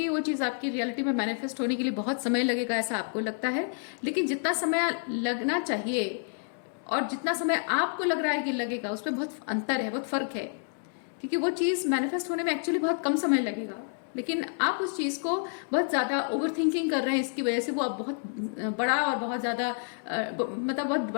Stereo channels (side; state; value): right; silent; 59 dB below the other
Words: वो चीज़ आपकी रियलिटी में मैनिफेस्ट होने के लिए बहुत समय लगेगा, ऐसा आपको लगता है। लेकिन जितना समय लगना चाहिए और जितना समय आपको लग रहा है कि लगेगा, उसमें बहुत अंतर है, बहुत फर्क है। क्योंकि वो चीज़ मैनिफेस्ट होने में एक्चुअली बहुत कम समय लगेगा, लेकिन आप उस चीज़ को बहुत ज़्यादा ओवर थिंकिंग कर रहे हैं, इसकी वजह से वो अब बहुत बड़ा और बहुत ज़्यादा मतलब बहुत